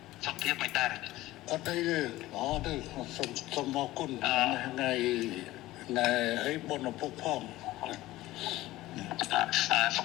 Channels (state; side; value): quieter; right; 16.9 dB